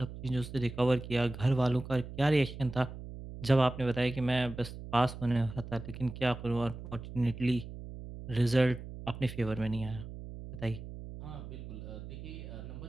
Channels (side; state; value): right; noise; hum, 11 dB below the sound